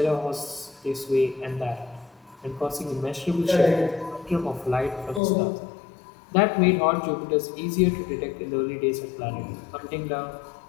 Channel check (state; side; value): drops out; right; at 5.2 s